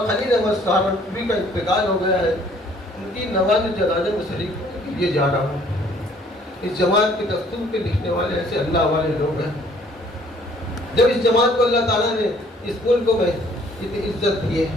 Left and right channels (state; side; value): normal; both; correlation 0.59